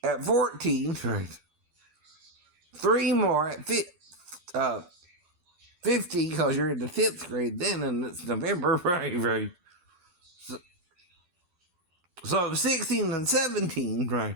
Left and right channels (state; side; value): late; left; 12 ms